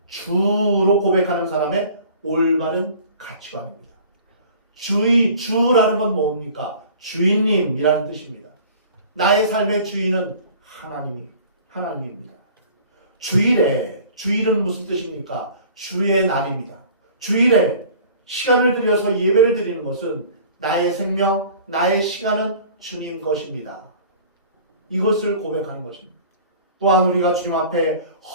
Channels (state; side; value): inverted; both; correlation -0.46